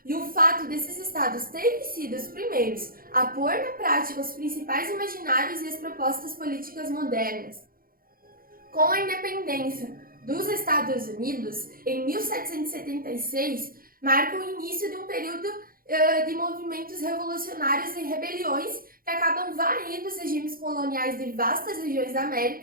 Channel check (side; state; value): left; late; 0.42 ms